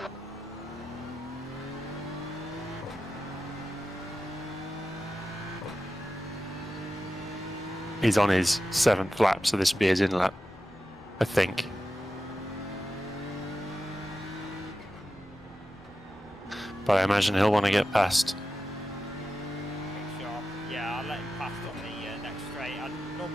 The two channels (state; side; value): normal; both; correlation 0.92